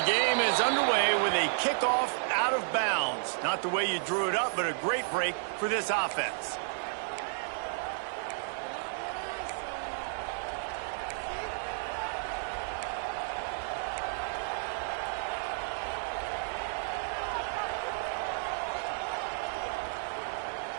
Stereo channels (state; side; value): silent; left; digital silence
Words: the game is underway with a kickoff out of bounds. Not the way you drew it up, but a great break for this offense.